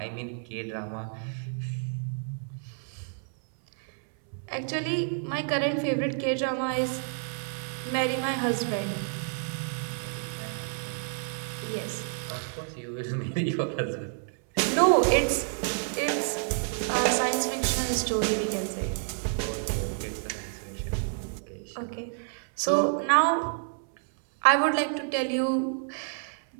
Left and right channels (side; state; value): left; silent; 59 dB below the other